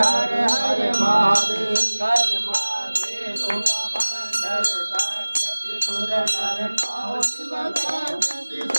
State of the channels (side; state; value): both; inverted; correlation -1.00